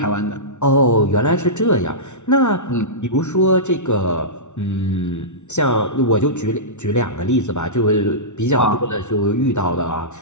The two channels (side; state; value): right; late; 0.83 ms